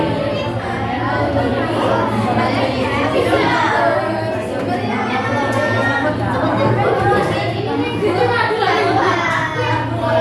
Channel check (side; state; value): both; identical; correlation 1.00